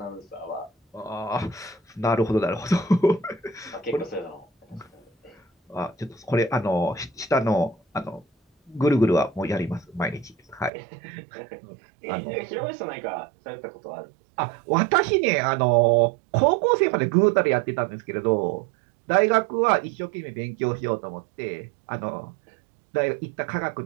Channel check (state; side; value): drops out; left; at 10.7 s